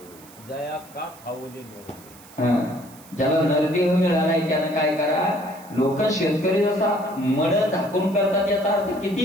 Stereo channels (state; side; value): noise; right; hiss, 22 dB below the sound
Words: जया का फावली. ज्याला नरदेह मिळालाय त्यानं काय करा? लोक शेतकरी जसा मड झाकून करतात याचा अर्थ